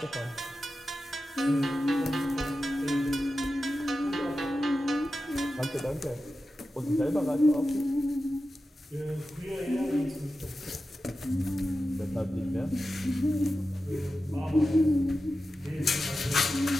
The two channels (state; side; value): normal; both; correlation 0.92